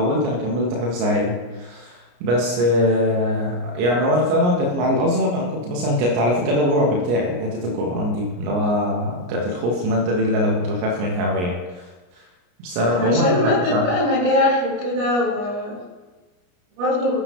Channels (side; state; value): left; late; 33 ms